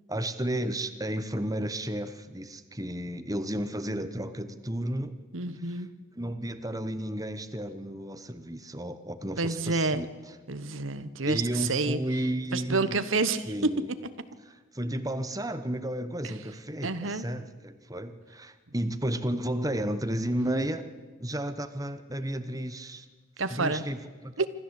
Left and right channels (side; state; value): both; normal; correlation 0.51